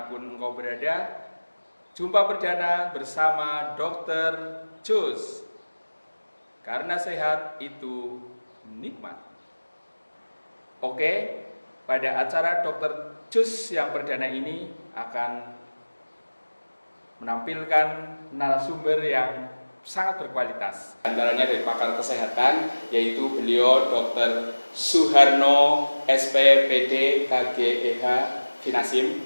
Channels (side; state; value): both; inverted; correlation -1.00